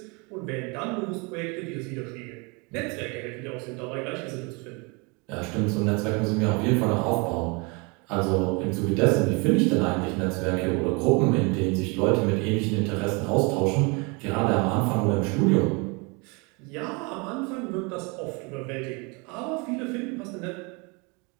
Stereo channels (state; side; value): quieter; left; 30.0 dB